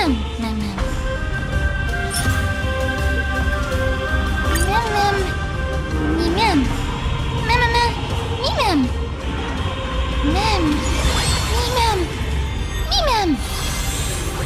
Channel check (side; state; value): both; identical; correlation 1.00